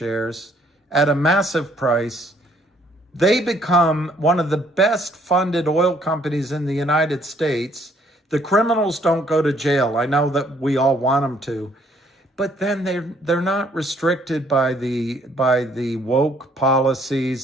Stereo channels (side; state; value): both; normal; correlation 0.64